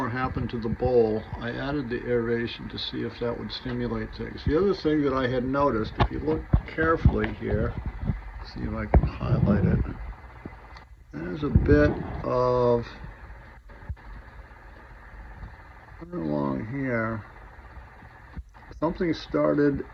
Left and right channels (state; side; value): identical; both; correlation 1.00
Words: happened to the bowl. I added the aeration to see if that would stimulate things. The other thing that I had noticed, if you look carefully here, see if I can highlight it, there's a bit of along here. Something started